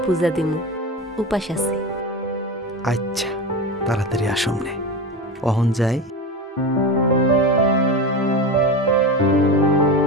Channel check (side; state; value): both; normal; correlation 0.23